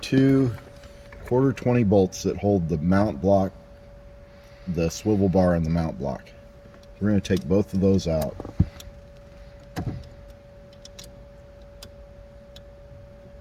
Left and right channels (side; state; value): both; identical; correlation 1.00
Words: 1/4-20 bolts that hold the mount block, the swivel bar and the mount block. We're going to take both of those out.